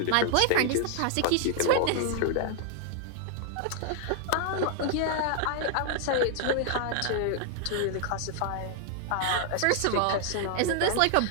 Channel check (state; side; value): different; both; correlation 0.00